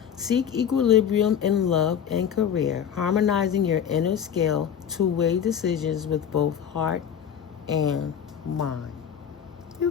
Seek equilibrium in love and career, harmonizing your inner scale to weigh decisions with both heart and mind.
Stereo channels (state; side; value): quieter; right; 8.4 dB